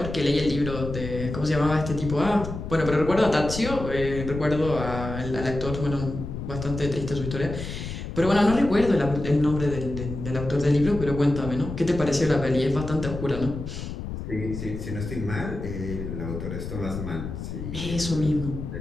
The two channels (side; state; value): left; noise; rumble, 7 dB below the sound